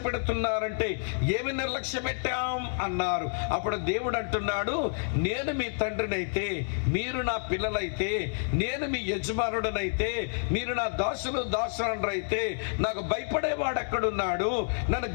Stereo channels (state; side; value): silent; right; digital silence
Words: పెడుతున్నారంటే ఏమి నిర్లక్ష్య పెట్టాం అన్నారు. అప్పుడు దేవుడు అంటున్నాడు, నేను మీ తండ్రినైతే, మీరు నా పిల్లలైతే, నేను మీ యజమానుడనైతే, మీరు నా దాసులైతే, నాకు భయపడేవాడు ఎక్కడున్నాడు, నన్ను